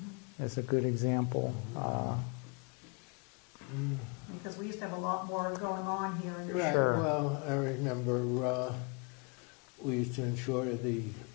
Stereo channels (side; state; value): right; quieter; 33.2 dB